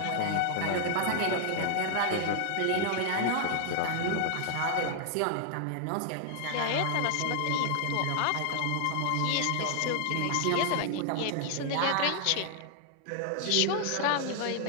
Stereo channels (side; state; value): both; different; correlation 0.00